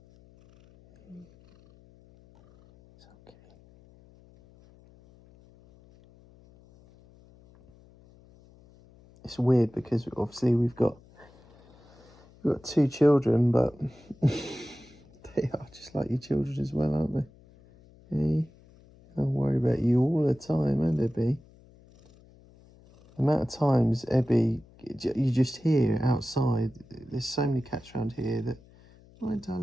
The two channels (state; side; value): noise; left; hum, 26 dB below the sound